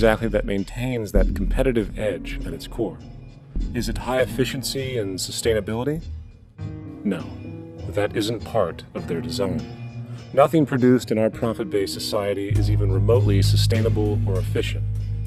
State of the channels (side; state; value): both; identical; correlation 1.00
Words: that maintains that competitive edge at its core? Is it high efficiency and sustainability? No, that isn't part of their design. Nothing produced in our profit-based society is even remotely sustainable or efficient.